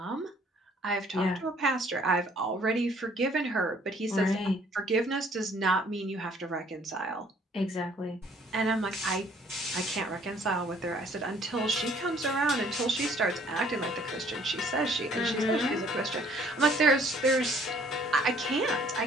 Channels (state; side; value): normal; both; correlation 0.59